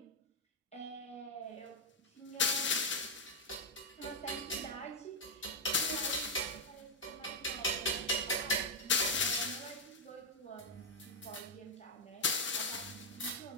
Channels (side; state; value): both; normal; correlation 0.00